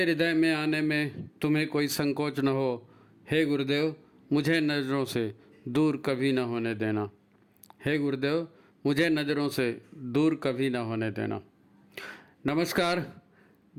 हृदय में आने में तुम्हें कोई संकोच न हो। हे गुरुदेव, मुझे नज़रों से दूर कभी न होने देना। हे गुरुदेव, मुझे नज़रों से दूर कभी न होने देना। नमस्कार।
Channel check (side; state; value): both; identical; correlation 1.00